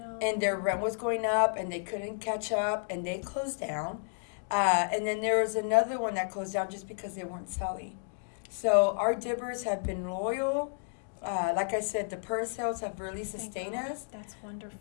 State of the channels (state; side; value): silent; right; digital silence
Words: And their rent was going up and they couldn't catch up and they closed down. And then there was another one that closed down just because they weren't selling. So our dibbers have been loyal. Like I said, the purse sales have really Thank sustained God. us. That's wonderful.